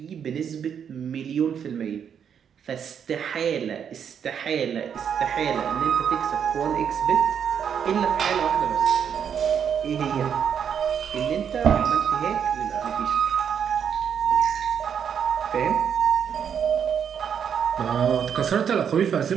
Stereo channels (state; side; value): quieter; left; 7.9 dB